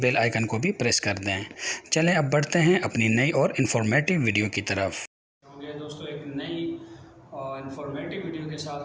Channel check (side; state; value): both; identical; correlation 1.00